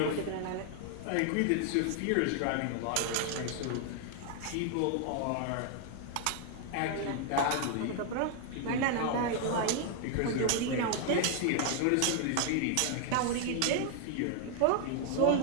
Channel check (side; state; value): both; different; correlation 0.00